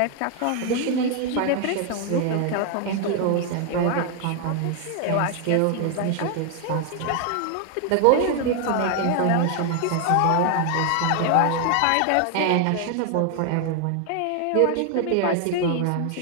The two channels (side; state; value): both; different; correlation 0.00